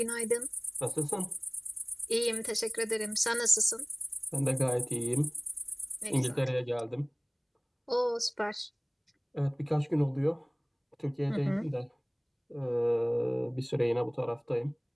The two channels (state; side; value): identical; both; correlation 1.00